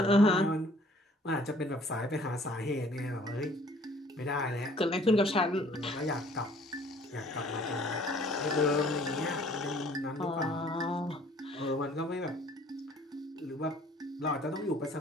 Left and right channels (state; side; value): normal; both; correlation 0.56